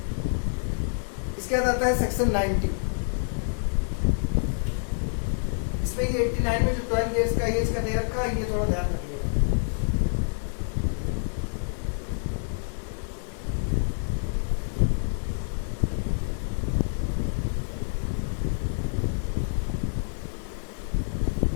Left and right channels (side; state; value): right; silent; digital silence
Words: इसके बाद आता है सेक्शन 90। इसमें ये 89 में जो 12 इयर्स का एज का दे रखा है, ये थोड़ा ध्यान रखिएगा।